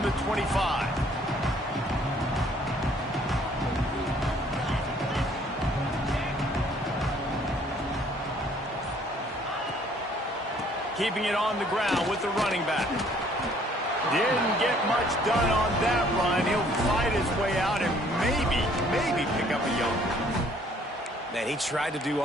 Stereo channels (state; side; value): normal; both; correlation 0.60